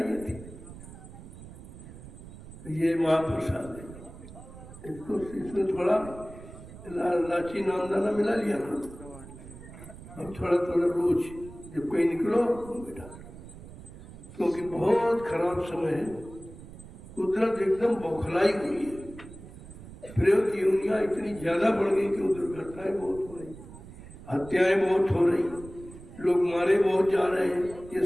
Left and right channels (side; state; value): right; noise; rumble, 16 dB below the sound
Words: थी। ये महाप्रसाद है, इसको इसमें थोड़ा लाची नामदाना मिला लिया करो। अब थोड़ा थोड़ा रोज जब कहीं निकलो बेटा, क्योंकि बहुत खराब समय है, कुदरत एकदम बौखलाई हुई है। प्रयोग योनियां इतनी ज्यादा बढ़ गई कि वो दुर्घटनाएं बहुत हो रही, हत्याएं बहुत हो रही, लोग मारे बहुत जा रहे हैं। ये